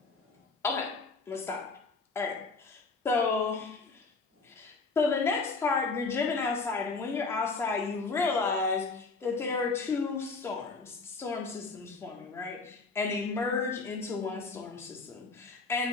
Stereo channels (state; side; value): quieter; right; 4.0 dB